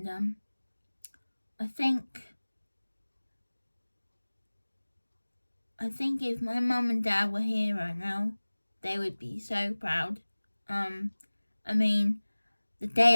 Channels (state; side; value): inverted; both; correlation -1.00